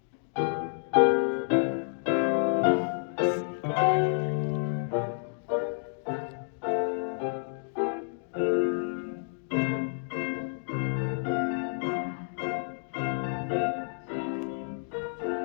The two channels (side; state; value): right; silent; digital silence